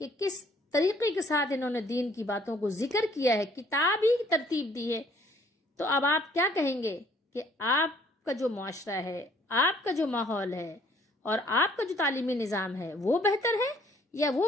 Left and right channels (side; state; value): both; normal; correlation 0.61